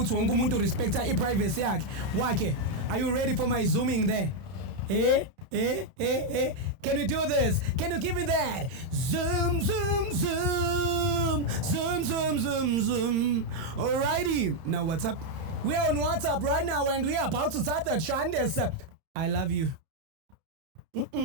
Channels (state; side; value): late; left; 31 ms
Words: wonke umuntu respecta privacy yakhe. Are you ready for my zooming there? Can we do this? Can you give me that? Zoom, zoom, zoom. Zoom, zoom, zoom, zoom. Alrighty. Now what's up? We are on WhatsApp right now and we are about to start the Chandas. I love you.